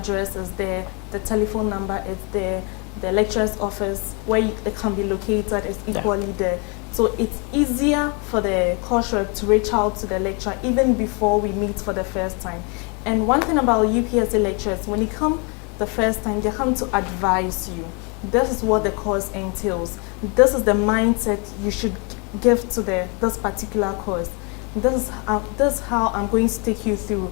is there, the telephone number is there, the lecturer's office where it can be located is equally there. So it's easier for the course rep to reach out to the lecturer even before we meet for the first time. And one thing about UPSA lecturers, when you come the first time, they come to advise you. This is what the course entails. This is the mindset you should give to this particular course. This is how I'm going to take you through.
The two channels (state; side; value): quieter; right; 33.3 dB